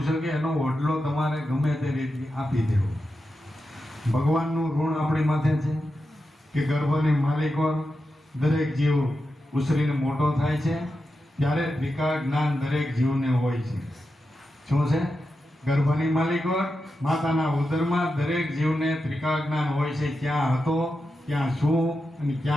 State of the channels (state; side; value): normal; both; correlation 0.89